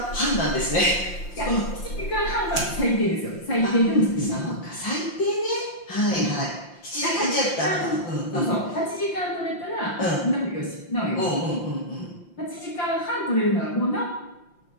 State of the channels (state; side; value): late; right; 5.7 ms